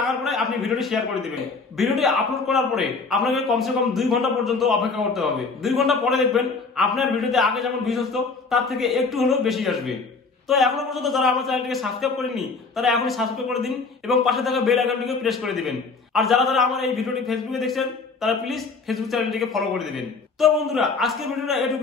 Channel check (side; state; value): right; quieter; 4.3 dB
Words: পরে আপনি ভিডিওটি শেয়ার করে দিবেন। ভিডিওটি আপলোড করার পরে আপনাকে কমসে কম 2 ঘন্টা পর্যন্ত অপেক্ষা করতে হবে। 2 ঘন্টা পরে দেখবেন আপনার ভিডিওতে আগে যেমন ভিউজ আসতো তার থেকে একটু হলেও বেশি আসবে। তো এখনো পর্যন্ত যারা আমার চ্যানেলটিকে সাবস্ক্রাইব করেননি তারা এখনই সাবস্ক্রাইব করে দিন এবং পাশে থাকা বেল আইকনটিকে প্রেস করে দিবেন। আর যারা আমার এই ভিডিওটি ফেসবুকে দেখছেন তারা প্লিজ ফেসবুক চ্যানেলটিকে ফলো করে দিবেন। তো বন্ধুরা আজকের ভিডিওটা